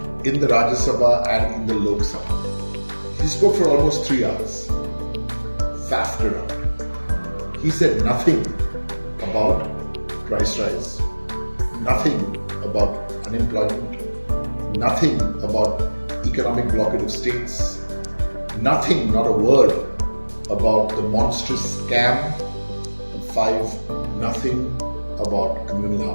in the Rajya Sabha and in the Lok Sabha. He spoke for almost 3 hours, faffed around. He said nothing about price rise, nothing about unemployment, nothing about economic blockade of states, nothing, not a word about the monstrous scam. 5, nothing about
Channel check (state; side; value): inverted; both; correlation -1.00